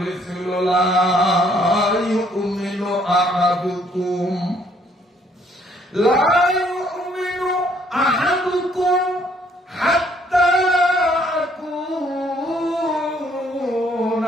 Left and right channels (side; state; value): both; normal; correlation 0.65